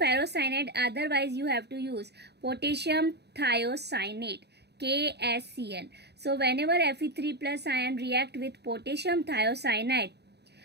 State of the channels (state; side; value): late; left; 0.48 ms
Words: otherwise you have to use potassium thiocyanate, KSCN. So whenever Fe3+ ion react with potassium thiocyanide,